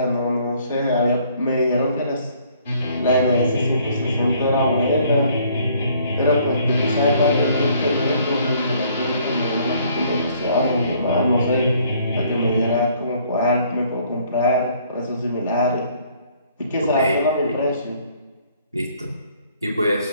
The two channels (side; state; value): both; inverted; correlation -0.62